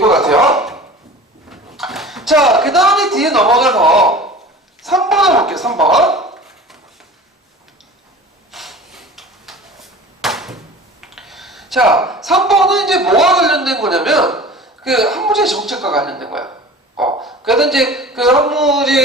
것 같아요. 자, 그 다음에 뒤에 넘어가서 3번을 볼게요. 3번. 자, 3번은 이제 뭐와 관련된 거냐면 그 한무제 정책과 관련된 거야. 그래서 이제 그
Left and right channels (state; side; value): normal; both; correlation 0.40